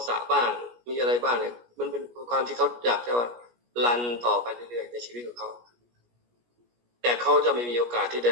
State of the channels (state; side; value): late; left; 17 ms